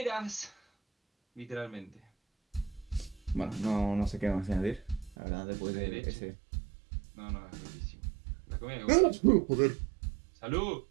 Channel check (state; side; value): drops out; left; at 5.2 s